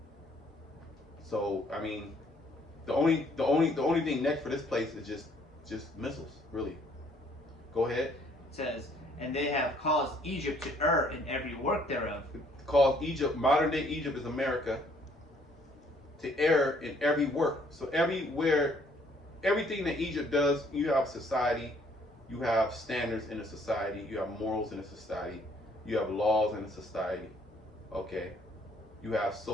So I mean, the only thing next for this place is just missiles, really. Go ahead. It says, and they have caused Egypt to err in every work thereof. Cause Egypt, modern day Egypt is America, to err in every work. So everywhere, everything that Egypt does, you have society, you have standards in a society, you have morals in a society, you have laws in a society, okay? You have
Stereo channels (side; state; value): both; normal; correlation 0.63